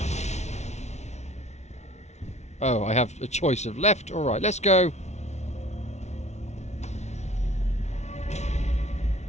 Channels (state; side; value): late; right; 0.32 ms